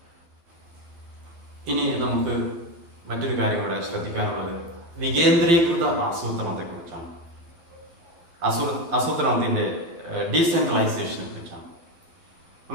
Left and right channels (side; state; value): left; late; 12 ms